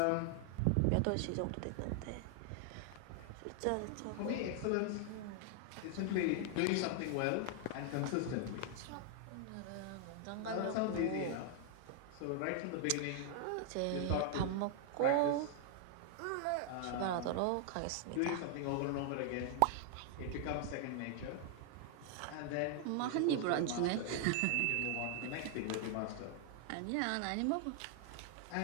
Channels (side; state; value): both; different; correlation 0.00